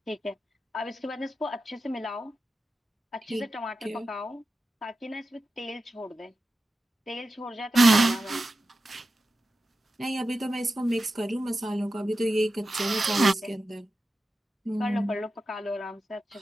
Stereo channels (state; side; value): normal; both; correlation 0.92